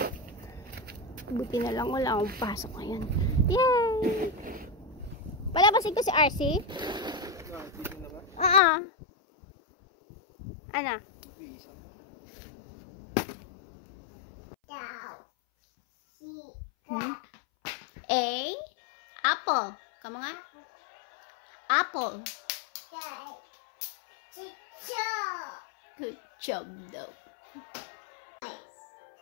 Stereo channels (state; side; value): drops out; right; at 8.6 s